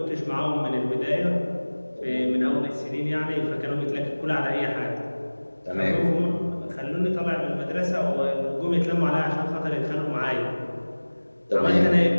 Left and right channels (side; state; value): both; inverted; correlation -1.00